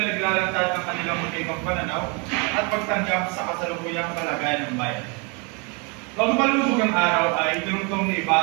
ay naglalantad ng kanilang magkaibang pananaw at pagtanggap sa kasalukuyang kalagayan ng bayan. Bago palubog ang araw ay tinungtong ni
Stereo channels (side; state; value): left; quieter; 32.0 dB